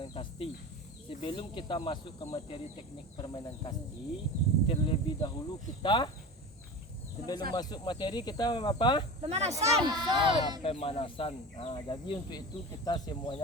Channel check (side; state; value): both; normal; correlation 0.30